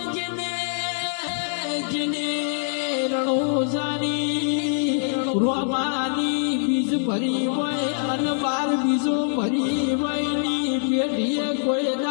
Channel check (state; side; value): silent; right; digital silence